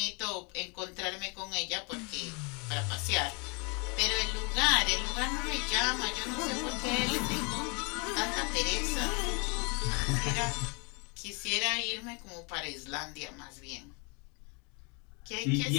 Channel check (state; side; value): quieter; right; 32.0 dB